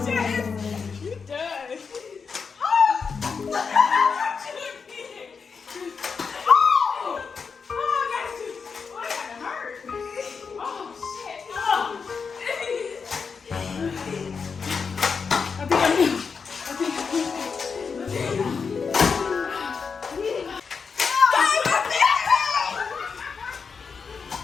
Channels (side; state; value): right; quieter; 5.5 dB